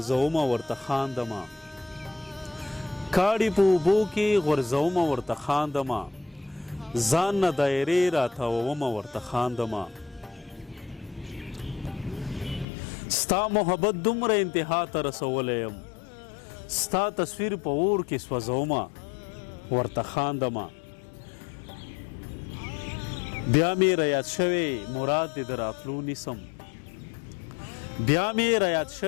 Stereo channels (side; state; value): right; drops out; at 12.7 s